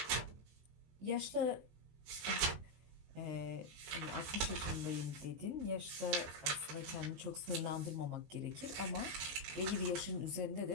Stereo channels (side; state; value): left; late; 19 ms